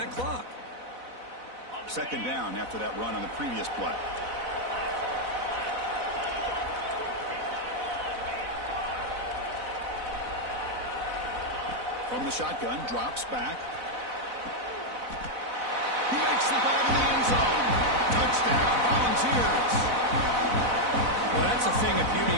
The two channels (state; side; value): late; left; 4.0 ms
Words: clock. 2nd down after that run on the previous play. From the shotgun, drops back. He makes the ball in the end zone. Touchdown, Volunteers. Well, that's a thing of